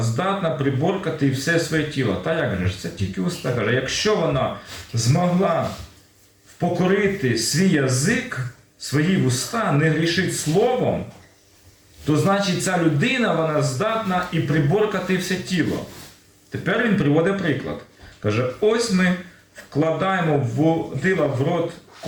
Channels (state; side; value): identical; both; correlation 1.00